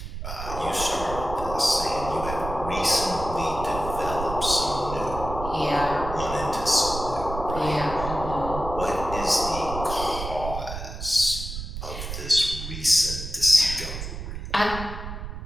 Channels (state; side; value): noise; right; rumble, 8 dB below the sound